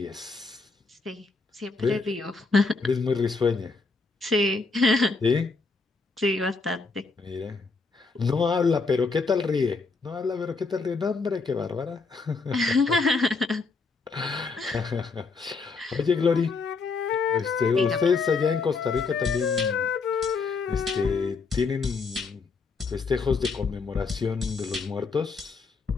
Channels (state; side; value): quieter; right; 4.3 dB